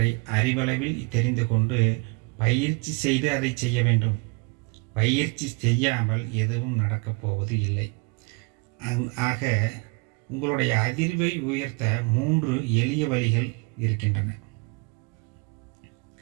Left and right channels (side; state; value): left; quieter; 30.1 dB